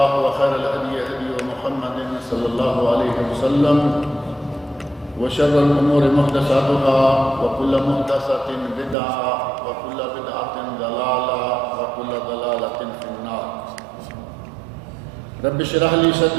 وخير الهدي هدي محمد صلى الله عليه وسلم وشر الأمور محدثاتها وكل محدثة بدعة وكل بدعة ضلالة وكل ضلالة في النار. رب اشرح لي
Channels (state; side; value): drops out; left; at 9.0 s